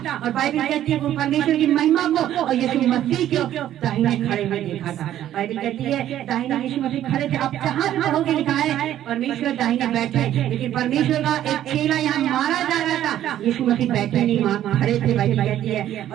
और बाइबल कहती है वो परमेश्वर की महिमा को और यीशु मसीह को दाहिने खड़े हुए देखा था। बाइबल कहती है दाहिने यीशु मसीह खड़े थे। अब जहाँ पढ़ोगे लिखा है परमेश्वर दाहिने बैठे, लेकिन परमेश्वर का एक चेला यहाँ मारा जा रहा था, यीशु मसीह बैठे नहीं, खड़े थे। बाइबल कहती है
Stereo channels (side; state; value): left; quieter; 12.0 dB